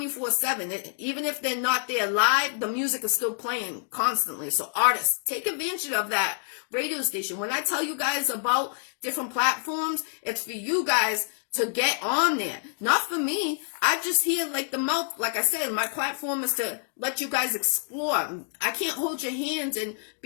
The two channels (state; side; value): silent; right; digital silence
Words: Even if they're not there live, the music is still playing constantly. So artists, take advantage of that radio station. When I tell you guys about different platforms, it's for you guys to get on there. Not for me. I just hear like the mouth. Like I said, my platform is to let you guys explore. I can't hold your hands and